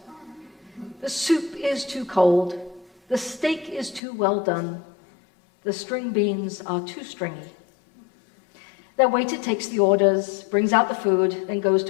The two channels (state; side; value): drops out; right; at 4.0 s